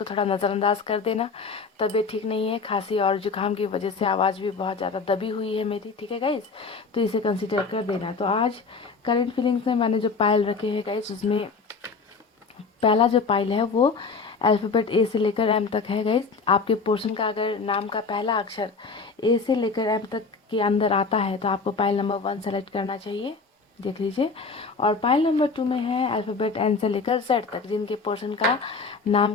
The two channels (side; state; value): right; quieter; 4.6 dB